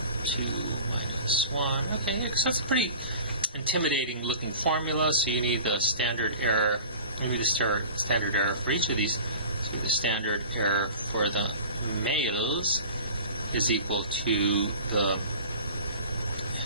2 minus 1. Okay, so that's a pretty intimidating looking formula, so you need the standard error. You need a standard error for each of these. So the standard error for the males is equal to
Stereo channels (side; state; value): both; inverted; correlation -0.40